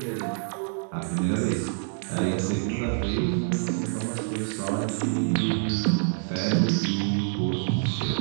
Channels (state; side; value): silent; left; 61 dB below the other